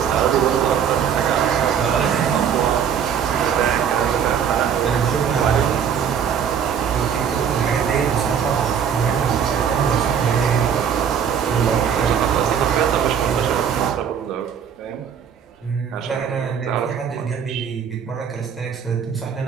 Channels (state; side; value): quieter; left; 7.8 dB